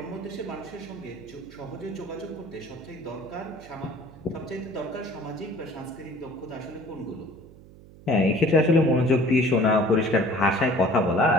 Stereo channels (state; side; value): noise; right; hum, 21 dB below the sound